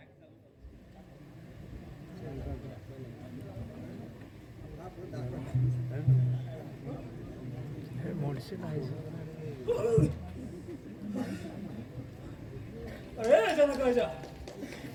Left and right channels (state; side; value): identical; both; correlation 1.00